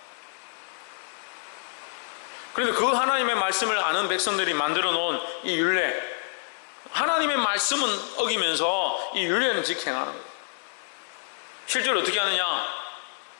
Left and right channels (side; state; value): right; silent; 60 dB below the other